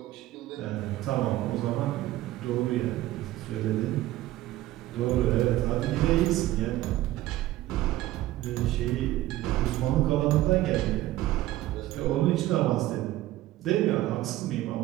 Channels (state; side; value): quieter; left; 15.7 dB